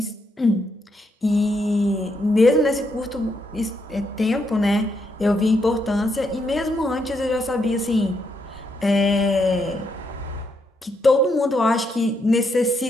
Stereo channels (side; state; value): both; normal; correlation 0.78